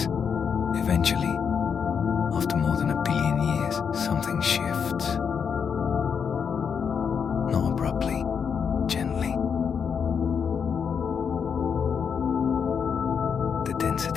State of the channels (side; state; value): right; quieter; 6.7 dB